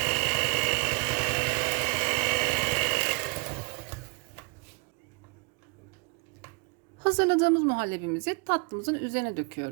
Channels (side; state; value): left; quieter; 30.4 dB